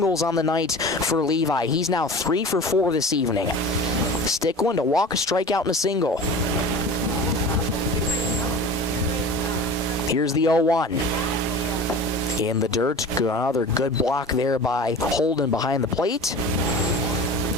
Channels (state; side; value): normal; both; correlation 0.36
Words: on the night for Levi. He's now 3 for 4 this evening. Stickland, a walk, a strikeout, and a single. Here's the 0-1. In the dirt, another good block there by Holden behind the plate.